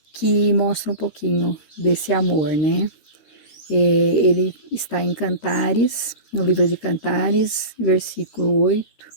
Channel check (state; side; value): late; right; 13 ms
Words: que mostra um pouquinho desse amor, né? Ele está em Cantares, no livro de Cantares, versículo 8,